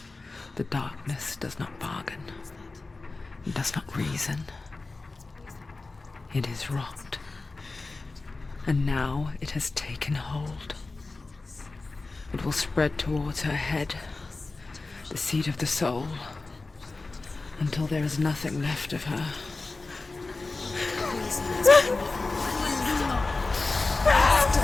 The darkness does not bargain. It does not reason. It is rot. And now it has taken hold. It will spread towards her head, the seat of the soul, until there is nothing left of her.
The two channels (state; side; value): quieter; right; 3.5 dB